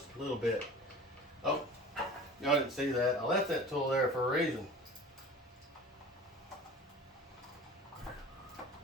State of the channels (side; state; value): both; normal; correlation 0.40